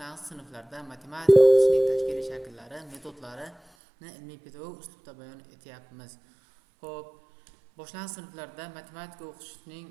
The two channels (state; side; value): drops out; left; at 3.6 s